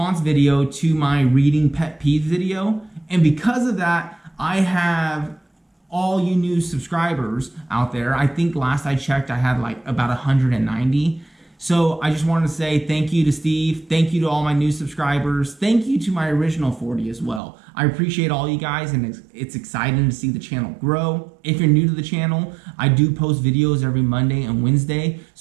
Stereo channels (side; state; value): left; drops out; at 17.4 s